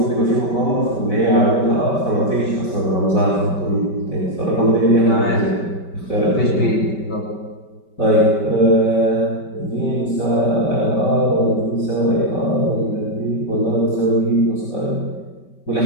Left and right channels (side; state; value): right; late; 5.2 ms